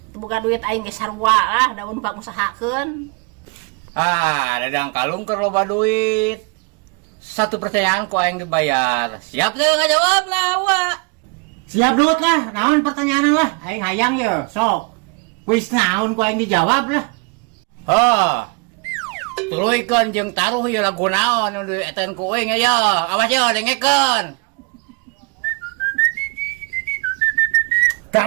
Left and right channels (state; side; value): quieter; left; 30.8 dB